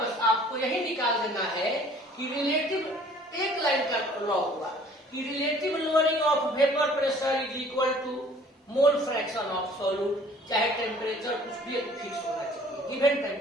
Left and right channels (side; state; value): both; normal; correlation 0.53